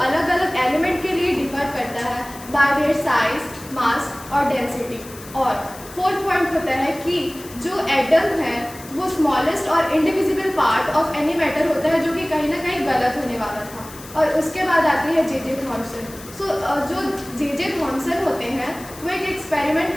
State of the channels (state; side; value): noise; left; hiss, 17 dB below the sound